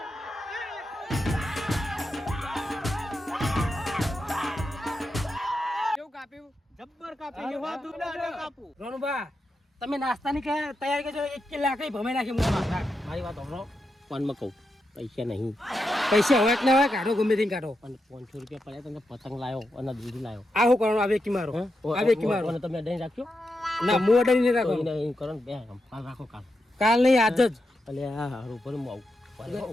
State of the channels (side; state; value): both; normal; correlation 0.86